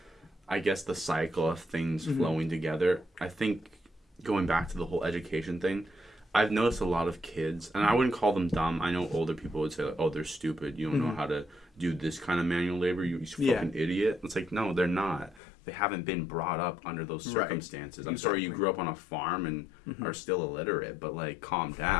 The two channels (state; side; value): drops out; right; at 15.4 s